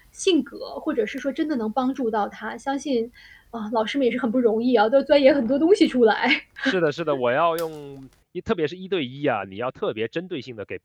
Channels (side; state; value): both; identical; correlation 1.00